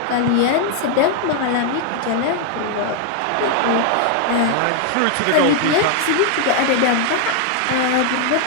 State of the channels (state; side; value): different; both; correlation 0.00